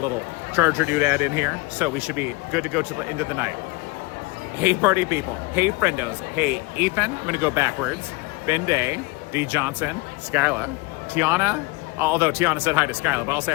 charger doodad in here, so we should be good to go to the end of the night. Hey party people, hey friendos, hey Ethan, I'm gonna go backwards, Ben Day, D Johnson, Skyla, Tiana, although Tiana said hi to Skyla, but I'll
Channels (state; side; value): quieter; right; 24.6 dB